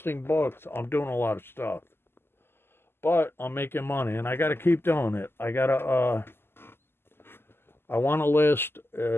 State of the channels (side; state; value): right; late; 0.11 ms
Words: books, I'm doing a lot of stuff. But I'm making money, and I got to keep doing it. I want to list